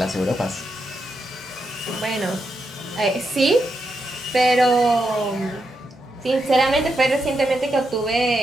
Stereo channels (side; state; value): both; normal; correlation 0.83